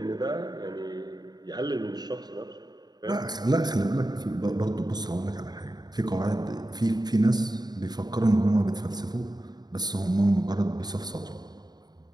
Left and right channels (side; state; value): left; late; 0.20 ms